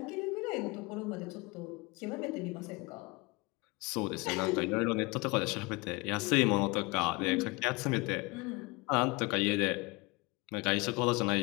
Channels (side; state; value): right; quieter; 25.3 dB